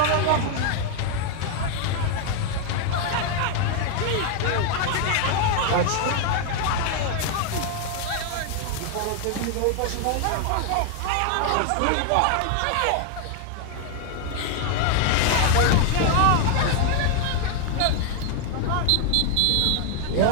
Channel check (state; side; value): different; both; correlation 0.01